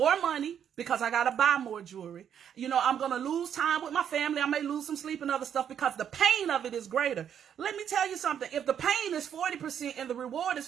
money because I got to buy more jewelry. You know, I'm going to lose time with my family. I may lose some sleep and other stuff because the pain of it is greater. Let me tell you something. If the pain is 40% and the reward is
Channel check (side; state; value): left; quieter; 8.8 dB